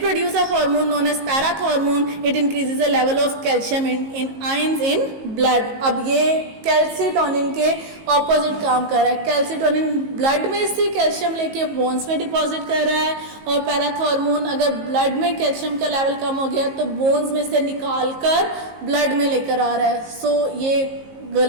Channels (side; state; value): left; late; 19 ms